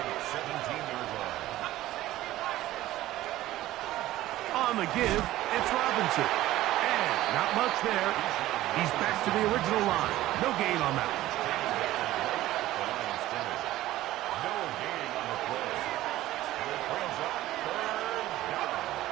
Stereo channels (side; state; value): left; quieter; 15.4 dB